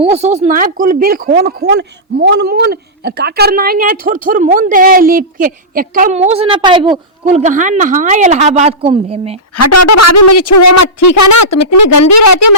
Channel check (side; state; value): both; normal; correlation -0.16